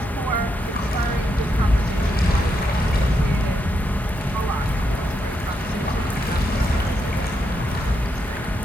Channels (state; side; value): normal; both; correlation 0.81